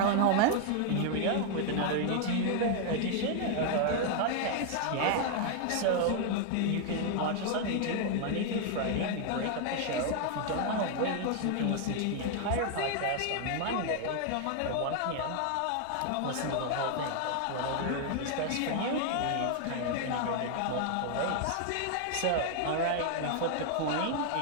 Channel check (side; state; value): both; different; correlation 0.00